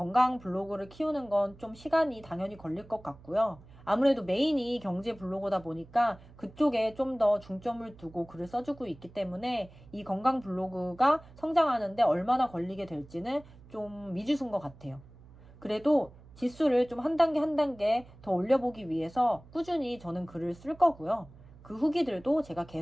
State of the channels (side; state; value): right; noise; hum, 22 dB below the sound